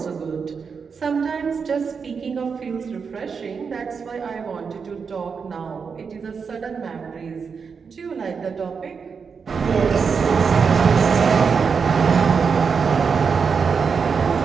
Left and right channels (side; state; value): left; quieter; 5.8 dB